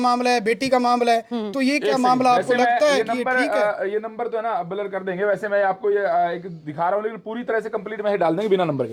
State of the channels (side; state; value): both; identical; correlation 1.00